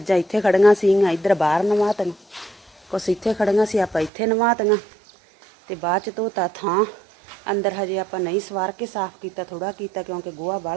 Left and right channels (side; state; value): left; drops out; at 4.1 s